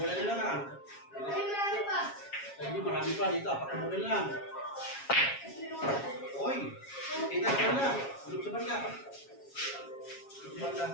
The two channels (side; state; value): right; late; 7.3 ms